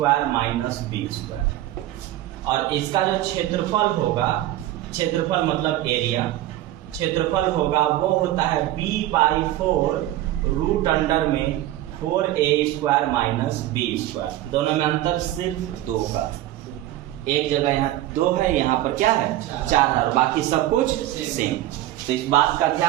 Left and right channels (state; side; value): quieter; left; 14.5 dB